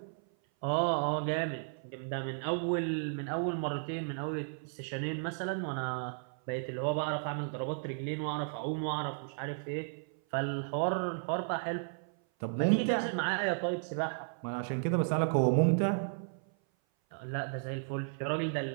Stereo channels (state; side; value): silent; left; 55 dB below the other